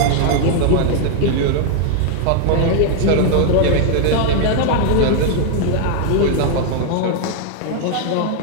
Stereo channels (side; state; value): both; different; correlation 0.00